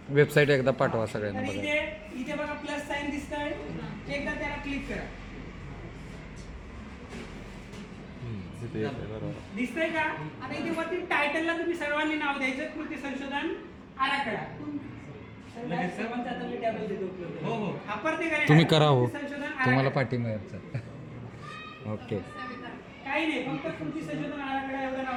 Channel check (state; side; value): identical; both; correlation 1.00